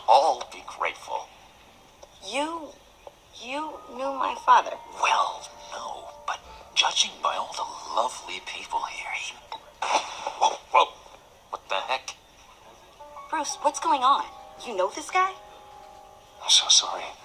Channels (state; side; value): identical; both; correlation 1.00